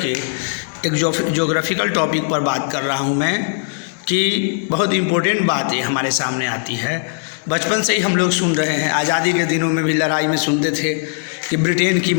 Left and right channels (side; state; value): right; silent; digital silence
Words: एक ज्योग्राफिकल टॉपिक पर बात कर रहा हूँ मैं कि बहुत इम्पोर्टेंट बात ये हमारे सामने आती है। बचपन से ही हम लोग सुन रहे हैं, आज़ादी के दिनों में भी लड़ाई में सुनते थे कि ब्रिटेन की